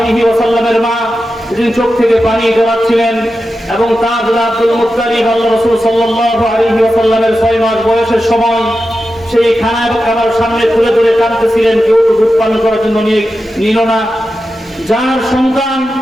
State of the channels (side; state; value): both; normal; correlation 0.91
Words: ওয়াসাল্লামের মা, তিনি চোখ থেকে পানি জড়াচ্ছিলেন এবং তার দাদা আব্দুল মুত্তালিব আল্লাহ রাসূল সাল্লাল্লাহু আলাইহি ওয়াসাল্লামের 6 মাস বয়সের সময় সেই খানা এবং খাবার সামনে তুলে ধরে কাঁদতেছিলেন, কেউ তো দুধ পান করার জন্য নিল না। যার সন্তান,